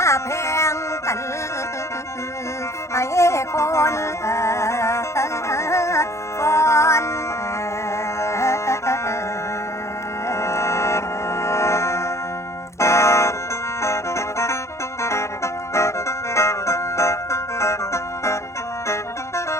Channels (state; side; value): late; right; 0.14 ms